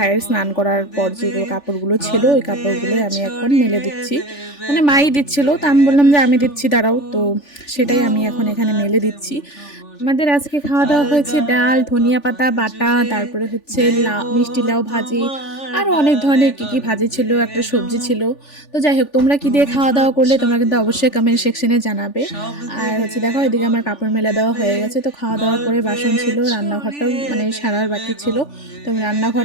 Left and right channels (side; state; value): right; late; 3.4 ms